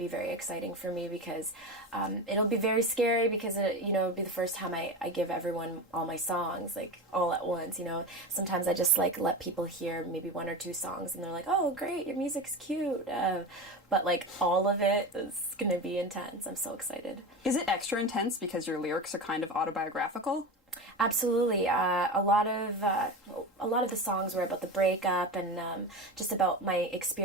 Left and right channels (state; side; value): normal; both; correlation 0.25